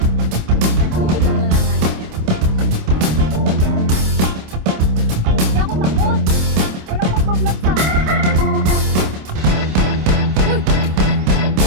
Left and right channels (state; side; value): late; left; 26 ms